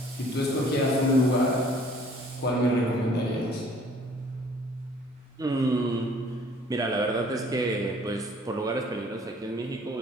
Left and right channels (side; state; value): both; normal; correlation 0.55